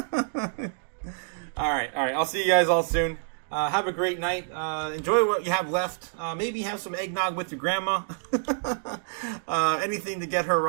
All right. I'll see you guys all soon. Have a great night. Enjoy what you have left. Maybe have some eggnog with your grandma. Anything to get her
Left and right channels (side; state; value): left; silent; digital silence